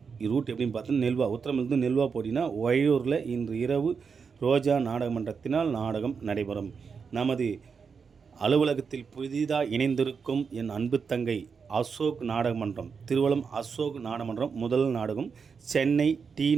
ரூட் எப்படின்னு பார்த்தீங்கன்னா நெல்வா, உத்தரமிருந்து நெல்வா போட்டிங்கன்னா ஒய்யூரில் இன்று இரவு ரோஜா நாடகமன்றத்தினால் நாடகம் நடைபெறும். நமது அலுவலகத்தில் புதிதாக இணைந்திருக்கும் என் அன்பு தங்கை அசோக் நாடகமன்றம், திருவலம் அசோக் நாடகமன்றம் முதல் நாடகம் சென்னை டி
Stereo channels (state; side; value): quieter; left; 5.8 dB